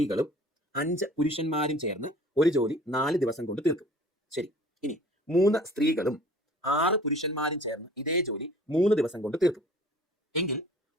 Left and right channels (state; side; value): normal; both; correlation 0.49